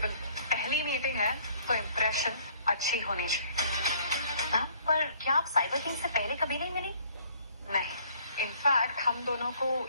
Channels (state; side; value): inverted; both; correlation -0.59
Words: हो। पहली मीटिंग है तो इम्प्रेशन अच्छी होनी चाहिए। मैम पर क्या आप साइबर किंग से पहले कभी नहीं मिली? नहीं, इनफैक्ट हम दोनों को